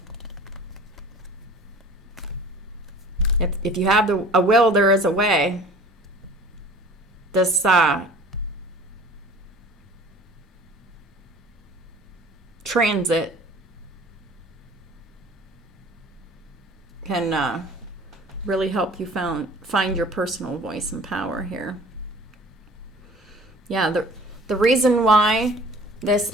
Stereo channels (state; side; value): normal; both; correlation 0.46